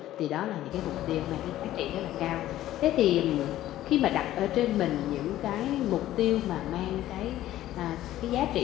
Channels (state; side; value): quieter; right; 13.9 dB